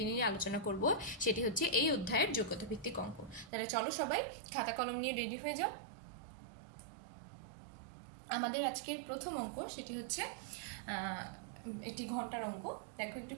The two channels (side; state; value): left; drops out; at 3.5 s